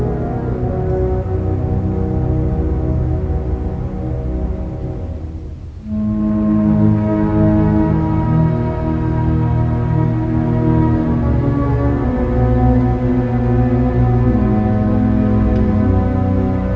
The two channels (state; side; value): identical; both; correlation 1.00